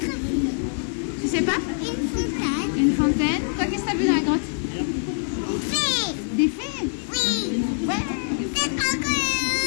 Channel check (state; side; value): silent; right; digital silence